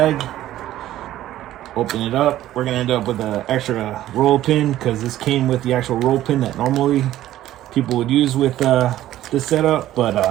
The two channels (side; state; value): left; quieter; 13.7 dB